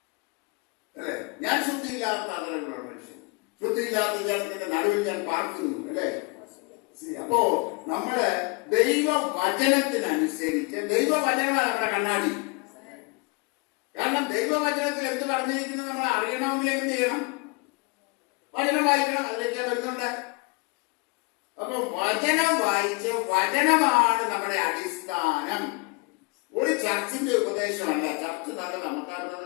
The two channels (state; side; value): quieter; right; 29.7 dB